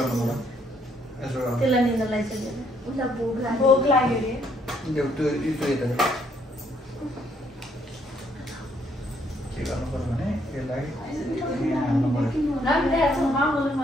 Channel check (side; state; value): both; normal; correlation 0.70